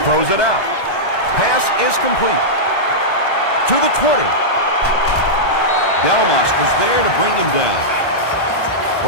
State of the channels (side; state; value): right; late; 1.1 ms